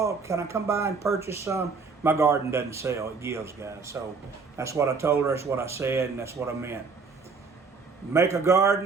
can I come by and purchase some? My garden doesn't sell, it gives, guys. So that's what I told her, that's what I said, and that's what I meant. Make a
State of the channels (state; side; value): quieter; left; 4.8 dB